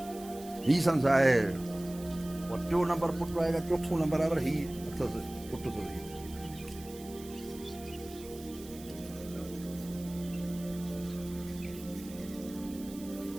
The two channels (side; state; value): right; noise; hiss, 17 dB below the sound